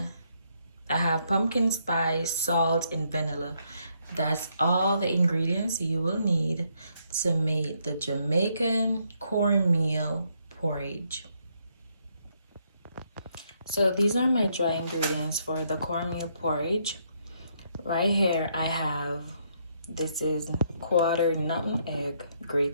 I have pumpkin spice, salt, and vanilla. That's all the ingredients you will need to make the Jamaican cornmeal porridge. So these are my dry ingredients for the cornmeal porridge. Right here I have, this is quarter nutmeg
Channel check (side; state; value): both; inverted; correlation -0.74